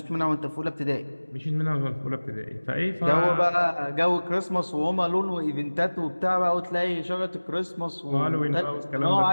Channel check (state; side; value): inverted; both; correlation -1.00